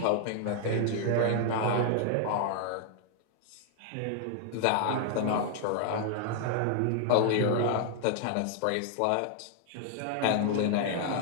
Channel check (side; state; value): both; different; correlation 0.00